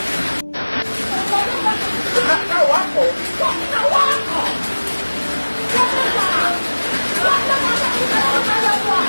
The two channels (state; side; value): inverted; both; correlation -1.00